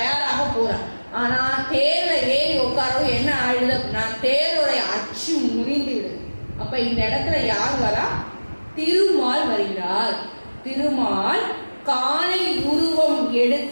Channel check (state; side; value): inverted; both; correlation -1.00